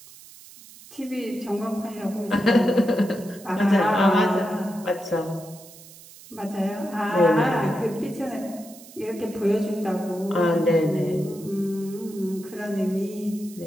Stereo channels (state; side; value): noise; right; hiss, 20 dB below the sound